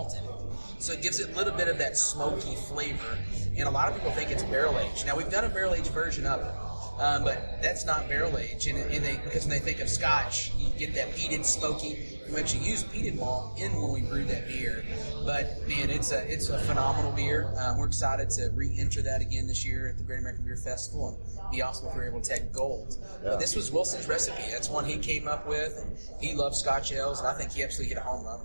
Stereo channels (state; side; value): inverted; both; correlation -1.00